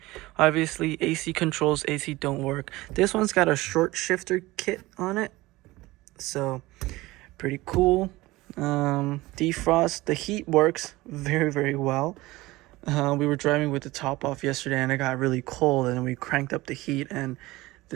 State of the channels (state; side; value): quieter; left; 19.6 dB